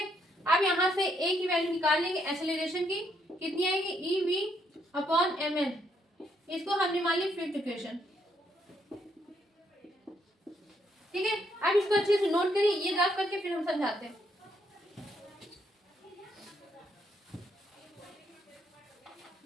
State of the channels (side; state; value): both; normal; correlation 0.74